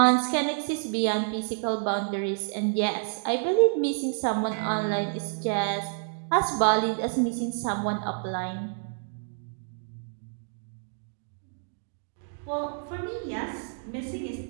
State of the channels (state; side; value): silent; left; 56 dB below the other